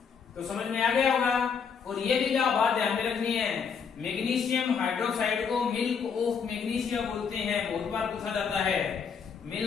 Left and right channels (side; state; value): right; quieter; 6.4 dB